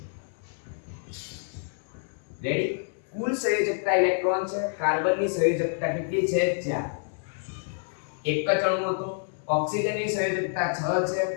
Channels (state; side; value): silent; right; 59 dB below the other